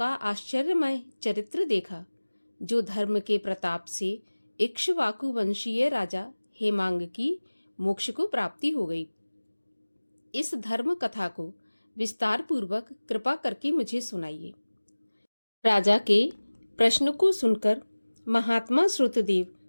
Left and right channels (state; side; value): inverted; both; correlation -1.00